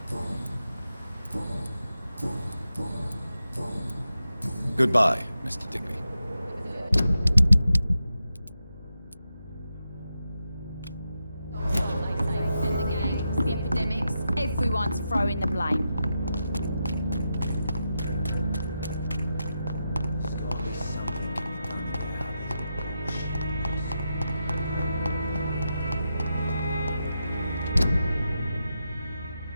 Goodbye, Mr. Digby. The gangs, the epidemics, everyone's throwing the blame.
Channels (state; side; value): inverted; both; correlation -0.88